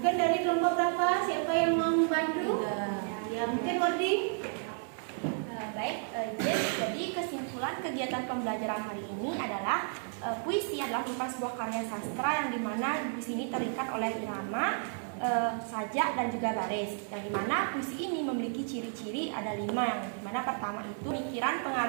dari kelompok berapa? Siapa yang mau membantu? Ya, mungkin Wardi. Baik, jadi kesimpulan kegiatan pembelajaran hari ini adalah puisi adalah merupakan sebuah karya sastra yang dimana puisi ini terikat oleh irama, sajak, dan juga baris. Yang dimana puisi ini memiliki ciri-ciri ada 5, yang dimana pertama itu pemikiran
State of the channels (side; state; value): left; silent; 56 dB below the other